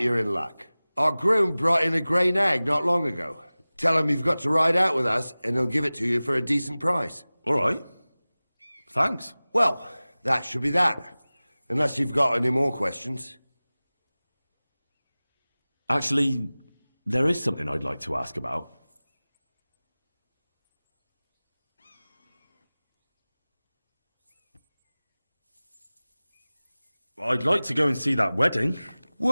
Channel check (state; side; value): inverted; both; correlation -0.99